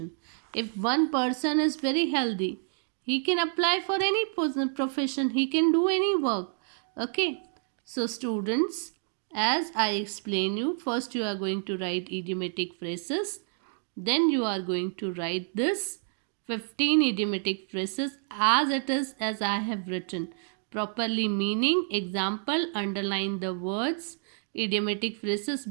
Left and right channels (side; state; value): left; silent; 59 dB below the other